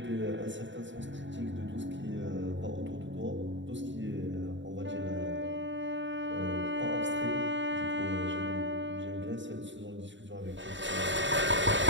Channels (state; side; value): late; left; 0.54 ms